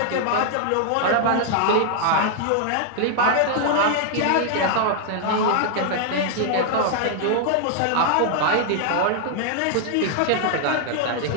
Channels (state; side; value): different; both; correlation 0.00